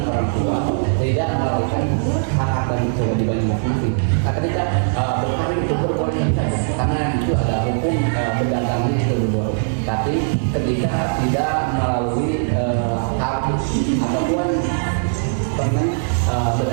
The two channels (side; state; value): left; silent; digital silence